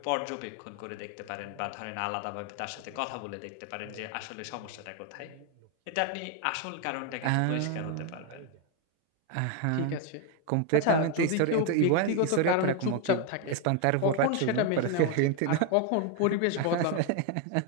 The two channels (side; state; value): both; different; correlation 0.01